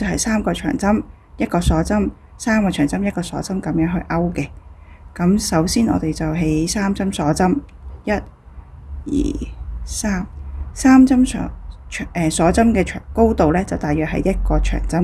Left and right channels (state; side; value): identical; both; correlation 1.00